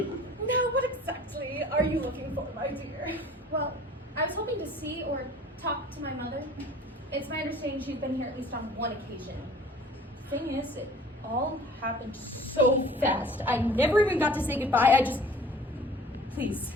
what exactly are you looking for, my dear? Well, I was hoping to see or talk to my mother. It's my understanding she's been here at least on one occasion. Thing is, it all happened so fast. I never even got to say goodbye. Please.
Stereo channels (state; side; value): normal; both; correlation 0.48